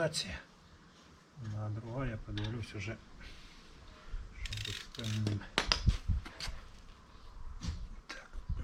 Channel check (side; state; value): both; identical; correlation 1.00